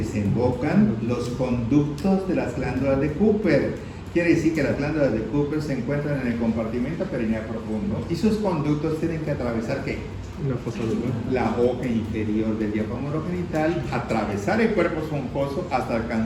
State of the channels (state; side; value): identical; both; correlation 1.00